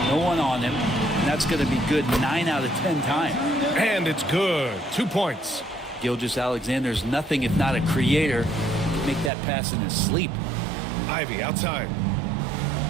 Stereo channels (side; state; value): left; drops out; at 9.3 s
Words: No one on him. And that's going to be good 9 out of 10 times. And it's good. 2 points. Gilgeous-Alexander's nothing if not a creator. He can make that pass in his sleep. Ivy outside.